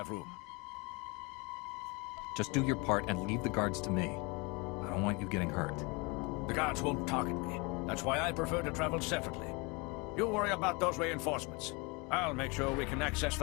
room. Just do your part and leave the guards to me. I don't want you getting hurt. The guards won't target me. That's why I prefer to travel separately. You worry about those reinforcements. I'll make sure we can access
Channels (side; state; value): right; quieter; 28.4 dB